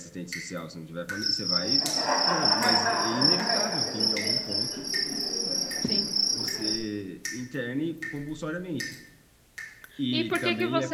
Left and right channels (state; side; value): identical; both; correlation 1.00